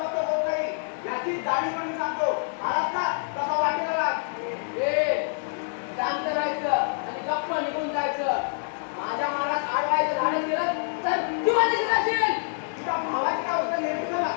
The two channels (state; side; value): silent; right; digital silence